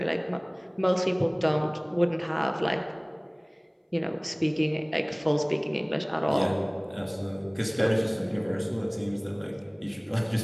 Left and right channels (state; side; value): identical; both; correlation 1.00